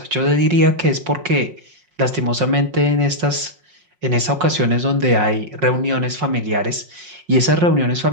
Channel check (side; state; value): left; late; 5.5 ms